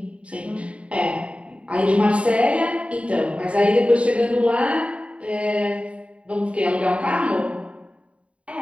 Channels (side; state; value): left; late; 0.062 ms